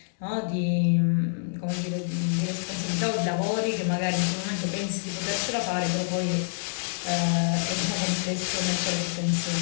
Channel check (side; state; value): right; silent; digital silence